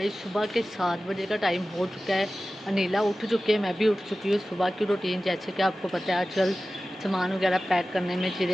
सुबह के 7 बजे का टाइम हो चुका है। अनीला उठ चुके हैं, मैं भी उठ चुकी हूँ। सुबह की रूटीन जैसे कि आपको पता है आजकल सामान वगैरह पैक करने में,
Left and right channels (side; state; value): both; normal; correlation 0.95